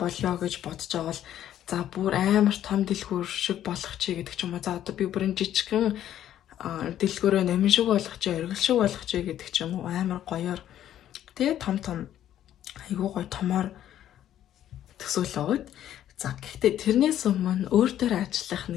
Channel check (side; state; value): right; quieter; 11.5 dB